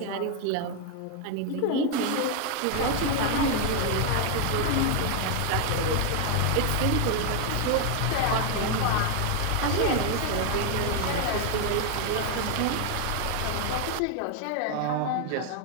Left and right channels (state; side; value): different; both; correlation 0.01